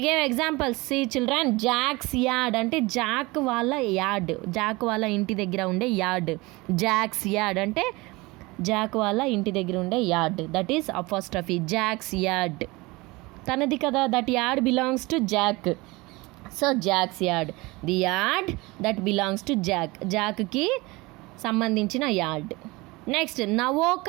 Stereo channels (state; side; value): quieter; left; 23.1 dB